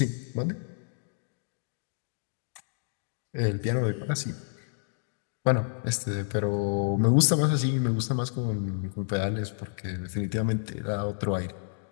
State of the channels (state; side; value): silent; right; digital silence